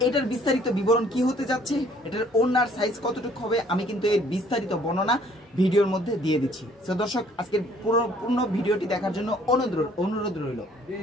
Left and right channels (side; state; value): both; normal; correlation 0.59